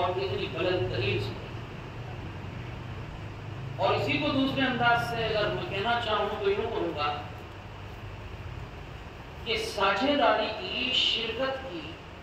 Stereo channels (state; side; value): identical; both; correlation 1.00